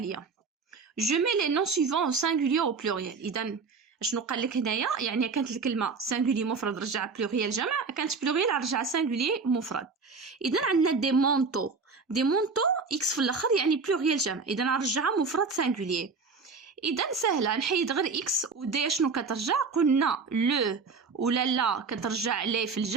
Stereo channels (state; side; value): quieter; left; 4.7 dB